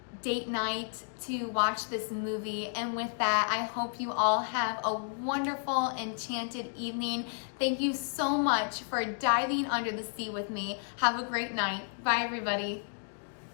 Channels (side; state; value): right; silent; digital silence